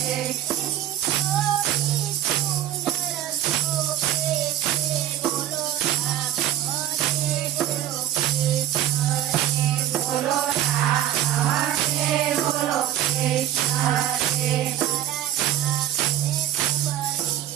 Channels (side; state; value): left; quieter; 11.9 dB